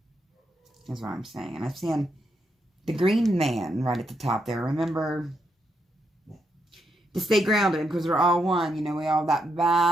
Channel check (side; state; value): both; normal; correlation 0.80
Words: That's what I'm saying. And I've seen the green man right at the top there. Remember to stay grounded, because we're all one. You know, we all have that